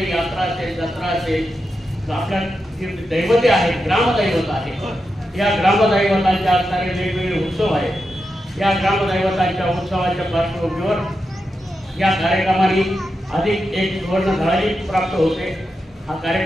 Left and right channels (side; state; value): both; normal; correlation 0.88